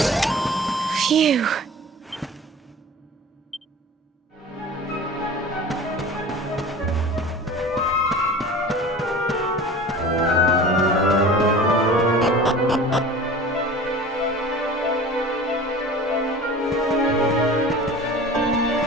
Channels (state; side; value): normal; both; correlation 0.39